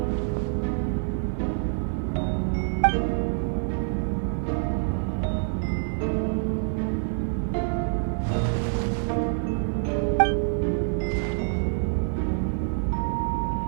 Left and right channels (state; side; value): silent; left; digital silence